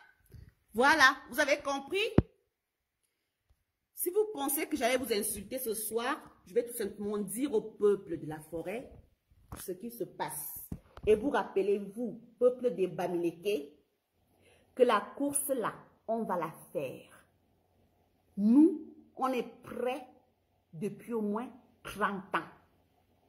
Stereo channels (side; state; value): both; identical; correlation 1.00